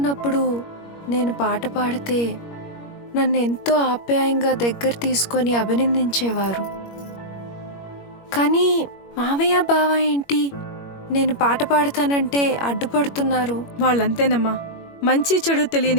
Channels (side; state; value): right; late; 21 ms